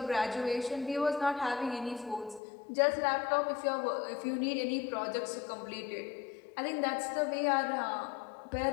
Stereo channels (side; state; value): right; drops out; at 2.4 s